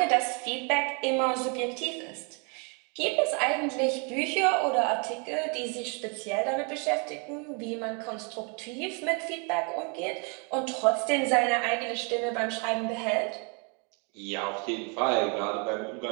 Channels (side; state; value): left; quieter; 35.4 dB